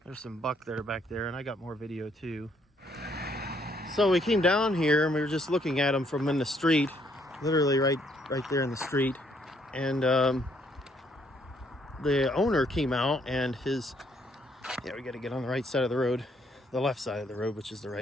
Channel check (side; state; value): both; normal; correlation 0.69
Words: There's some buck that are back there, and I got more video too. So we came down here and we were just looking at them from in the street, literally right there in the street, and the owner came out and we got to get on the right side of the road, the left side of the road, which is the